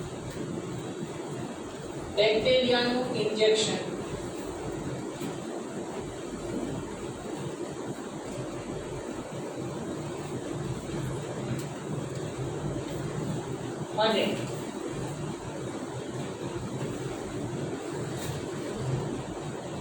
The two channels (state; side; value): identical; both; correlation 1.00